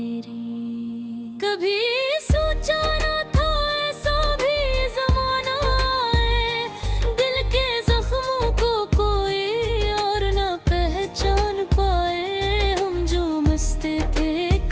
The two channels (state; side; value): identical; both; correlation 1.00